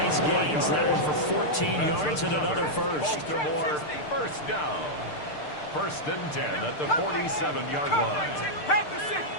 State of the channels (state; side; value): late; right; 6.7 ms